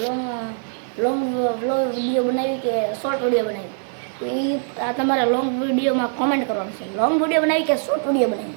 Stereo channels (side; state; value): left; silent; digital silence